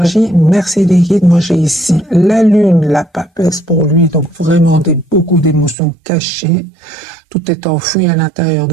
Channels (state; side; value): drops out; left; at 5.8 s